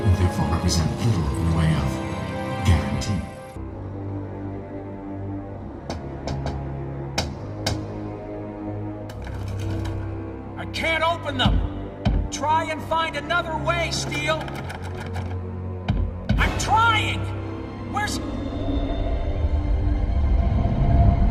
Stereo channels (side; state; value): both; identical; correlation 1.00